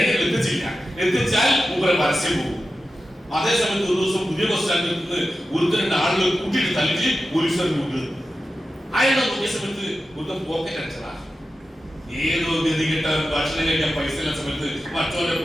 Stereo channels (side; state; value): both; normal; correlation 0.92